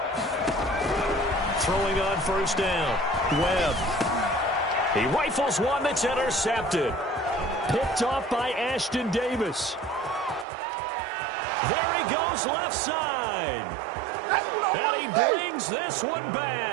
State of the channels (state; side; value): drops out; left; at 10.5 s